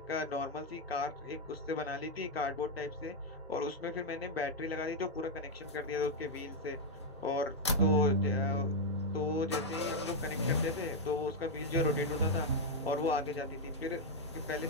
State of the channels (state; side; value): normal; both; correlation -0.01